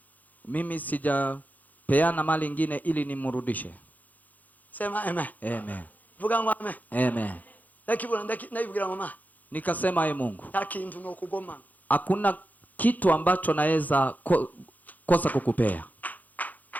Mimi sijapeana mali ingine ili nimrudishe. sema amen. Amen. Vuga ngo amen. Amen. Ndakibwira mama, Nikasema ye Mungu, takintu no kugoma, hakuna kitu ambacho naweza kosa kukupea.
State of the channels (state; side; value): late; right; 0.081 ms